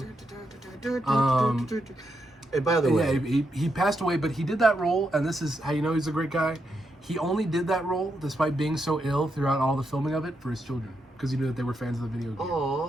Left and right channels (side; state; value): both; normal; correlation 0.82